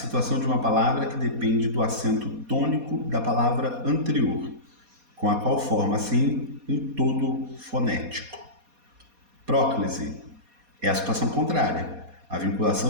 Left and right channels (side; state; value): left; late; 4.2 ms